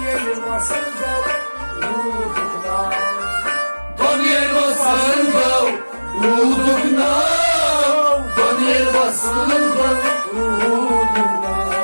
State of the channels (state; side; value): inverted; both; correlation -1.00